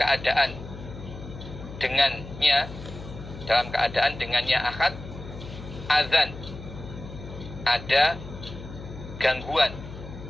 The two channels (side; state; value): left; noise; hum, 12 dB below the sound